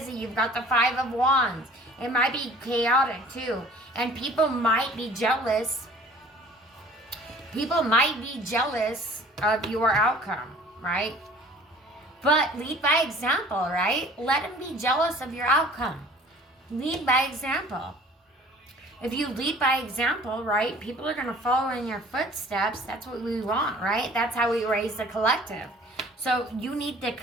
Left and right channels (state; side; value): normal; both; correlation 0.50